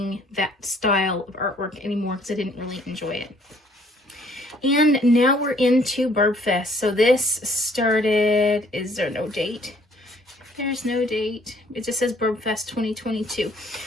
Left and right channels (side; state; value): both; normal; correlation 0.61